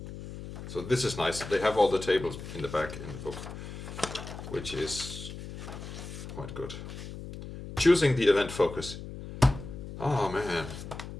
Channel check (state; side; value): noise; left; hum, 10 dB below the sound